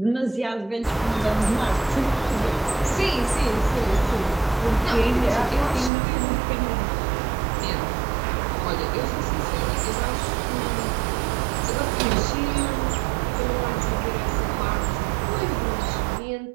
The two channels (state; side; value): drops out; left; at 5.9 s